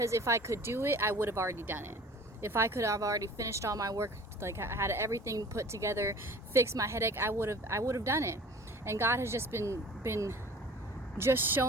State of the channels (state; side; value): normal; both; correlation 0.45